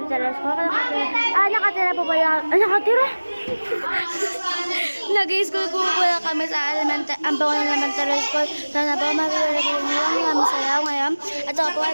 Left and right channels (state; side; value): inverted; both; correlation -1.00